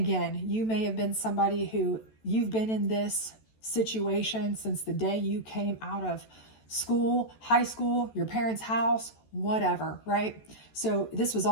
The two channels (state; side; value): late; right; 14 ms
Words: you may have been somebody who you've been in this situation since the day you came out of school, high school, your parents' house, whatever, right? So this was